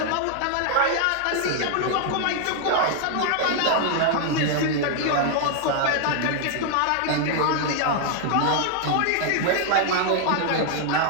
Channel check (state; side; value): different; both; correlation 0.00